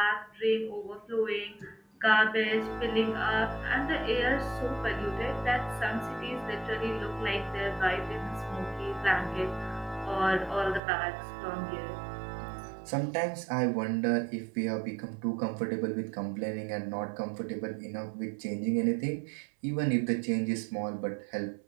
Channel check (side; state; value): left; drops out; at 10.8 s